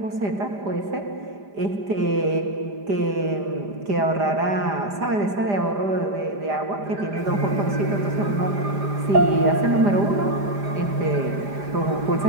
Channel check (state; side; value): late; left; 5.0 ms